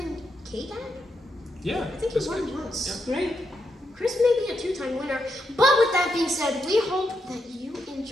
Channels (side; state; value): both; normal; correlation 0.82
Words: K-Dan. Yeah. I think that's you won good. once. Great. Chris may be a 2-time winner. But with that being said, we hope that you